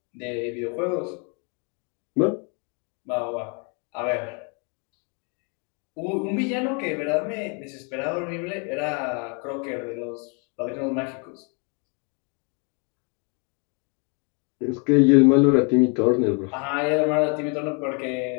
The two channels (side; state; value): right; quieter; 36.1 dB